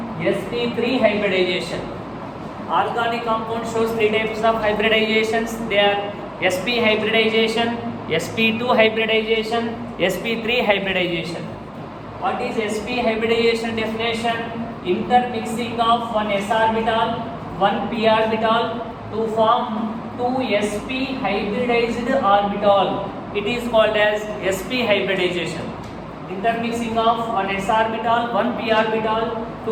sp3 hybridization. Organic compound shows three types of hybridizations. They are sp hybridization, sp2 hybridization, sp3 hybridization. What is sp hybridization definition? Intermixing of one s orbital, one p orbital to form two sp hybridized orbital. It is called as sp hybridization. Intermixing of one s orbital, one p orbital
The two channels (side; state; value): both; identical; correlation 1.00